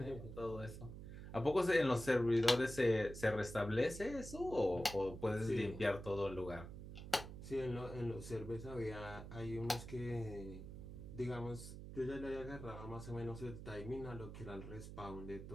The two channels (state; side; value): noise; right; hum, 10 dB below the sound